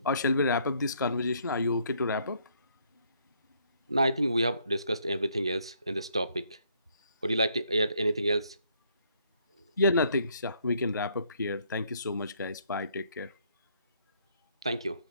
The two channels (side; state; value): both; inverted; correlation -0.68